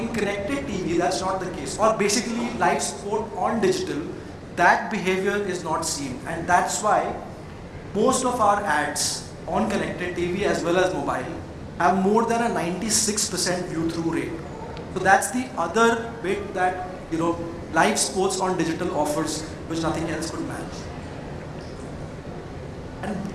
connected TV, that's not the case. Or basically live sport on digital, that behavior is not seen. And that's why most of our ads on connected TV as well as mobile have more than a 96% view-through rate. So that's the other bit that, live sports on digital offers, which nothing else could match. And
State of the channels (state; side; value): identical; both; correlation 1.00